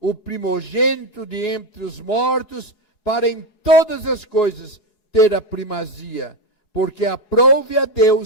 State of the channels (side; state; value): right; late; 4.8 ms